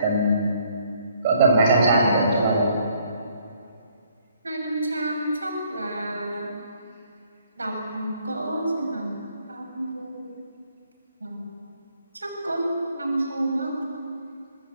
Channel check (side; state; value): both; inverted; correlation -0.66